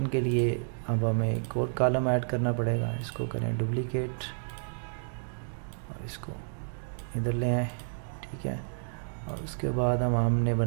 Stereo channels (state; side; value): silent; left; digital silence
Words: के लिए अब हमें एक और कॉलम ऐड करना पड़ेगा। इसको करें डुप्लीकेट और इसको इधर ले आए। ठीक है, और उसके बाद हमने